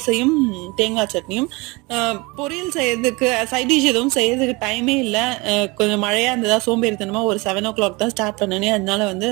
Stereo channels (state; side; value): quieter; left; 25.3 dB